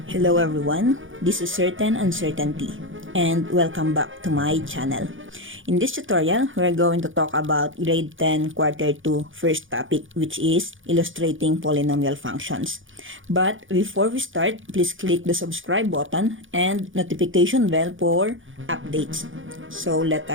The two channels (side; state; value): left; late; 0.57 ms